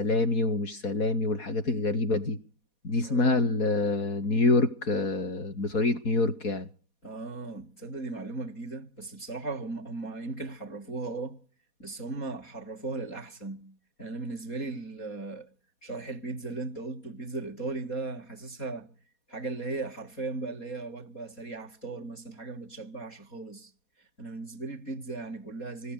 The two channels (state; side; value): late; right; 4.2 ms